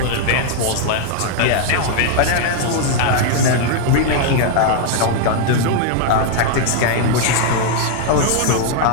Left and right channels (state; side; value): different; both; correlation 0.00